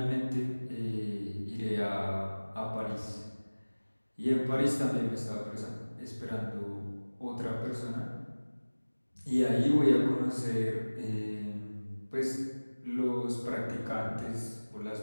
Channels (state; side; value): inverted; both; correlation -1.00